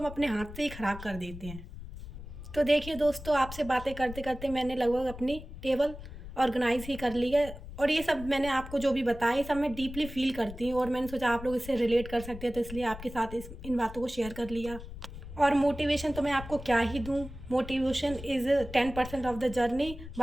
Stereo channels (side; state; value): left; noise; rumble, 13 dB below the sound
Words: अपने हाथ से ही ख़राब कर देते हैं। तो देखिए दोस्तों, आपसे बातें करते करते मैंने लगभग अपनी टेबल ऑर्गेनाइज ही कर ली है। और ये सब मैंने आपको जो भी बताया, ये सब मैं डीपली फील करती हूँ, और मैंने सोचा आप लोग इससे रिलेट कर सकते हैं, तो इसलिए आपके साथ इन बातों को शेयर कर लिया। और मोटिवेशन तो मैं आपको क्या ही दूँ। Motivation is 10% of the journey.